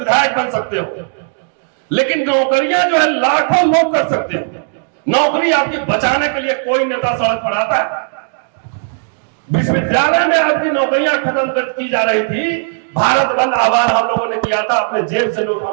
बन सकते हो, लेकिन नौकरियां जो है लाखों लोग कर सकते हो। नौकरी आपकी बचाने के लिए कोई नेता सड़क पर आता है। विश्वविद्यालय में आपकी नौकरियां खत्म की जा रही थी। भारत बंद आह्वान हम लोगों ने किया था, अपने जेब से लोग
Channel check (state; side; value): silent; left; digital silence